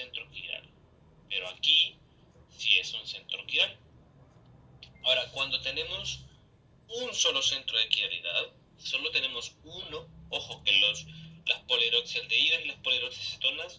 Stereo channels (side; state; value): both; identical; correlation 1.00